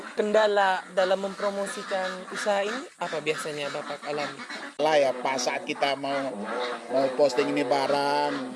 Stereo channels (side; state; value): both; identical; correlation 1.00